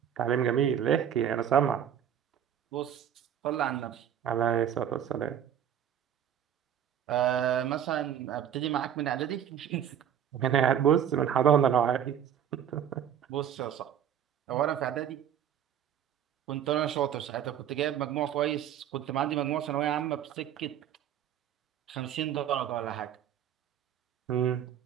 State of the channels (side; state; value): left; quieter; 9.5 dB